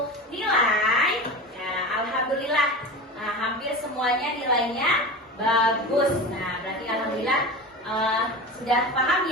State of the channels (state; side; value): normal; both; correlation 0.29